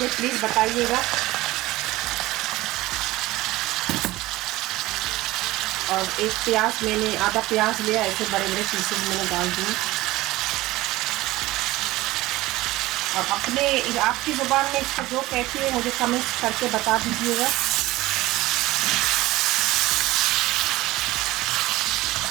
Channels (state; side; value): quieter; left; 18.2 dB